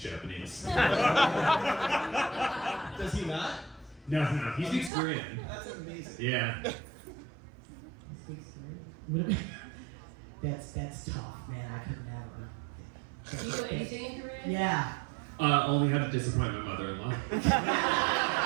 Japanese? Does he not? No, he speaks Korean. That's amazing. Yeah. That's tough, man. I could never. Do you know anything in Korean? Yeah. Only had to disappoint my mother-in-law.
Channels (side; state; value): left; drops out; at 4.9 s